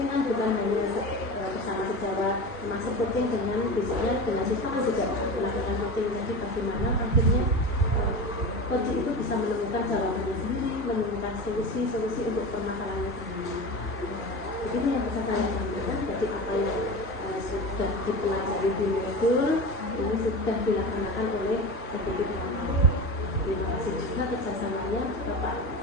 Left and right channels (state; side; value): normal; both; correlation 0.28